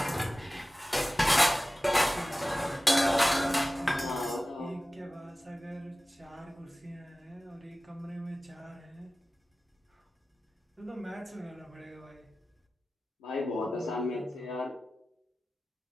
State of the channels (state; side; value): normal; both; correlation 0.96